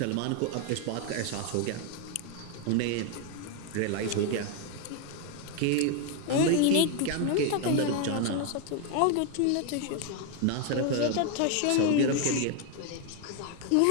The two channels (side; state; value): both; different; correlation 0.01